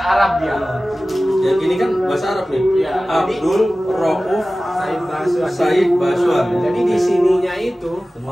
dia. Yang ini kan bahasa Arab nih. Iya, Abdul Rauf Said Baswan. Jadi di sininya itu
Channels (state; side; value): normal; both; correlation 0.97